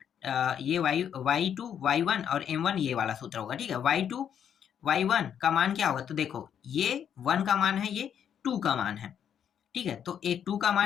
ये y2 y1 और m1 ये वाला सूत्र होगा, ठीक है। y2 y1 का मान क्या होगा, तो देखो ये 1 का मान है, ये 2 का मान है, ठीक है। तो एक 2 का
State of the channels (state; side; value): quieter; right; 8.7 dB